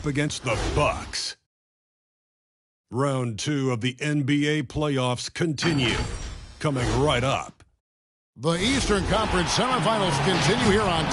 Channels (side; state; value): both; identical; correlation 1.00